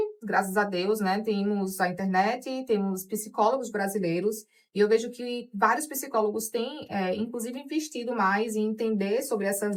graças a Deus, né, temos a internet, temos psicólogos brasileiros, e eu vejo que vários psicólogos têm, inclusive, investido mais em entender sobre essa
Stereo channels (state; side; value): identical; both; correlation 1.00